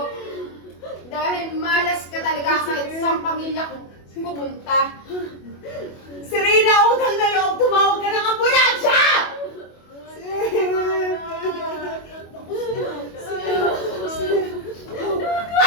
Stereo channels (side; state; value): right; late; 25 ms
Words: Dahil malas ka talaga kahit sa pamilya ko pupunta. Serena, utang na loob, tumawag ka ng ambulansya!